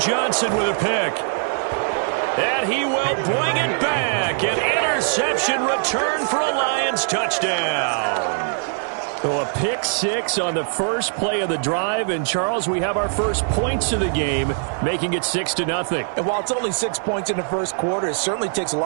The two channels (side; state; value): left; silent; digital silence